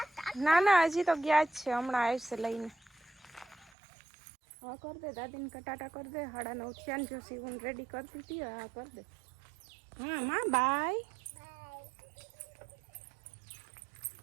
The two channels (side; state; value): left; drops out; at 3.7 s